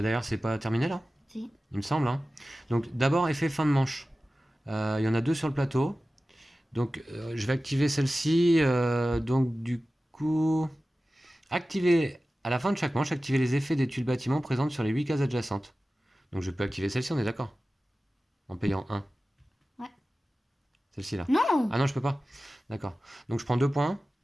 c'est pas terminé là, Si. il me semble. Hein. Donc, d'abord, effet fin de manche. Il y en a 2 sur le plateau. Donc, je vais activer celle-ci. Donc, du coup, activer à la fin de chaque manche, activer les effets des tuiles bâtiments présentes sur les 8 cases adjacentes. Donc, je peux activer celle-ci, on est d'accord? En payant 1. Ouais. Celle-ci là. Non. Ah non, je peux pas. D'accord. Donc, je prends 2 points.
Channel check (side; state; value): both; normal; correlation 0.96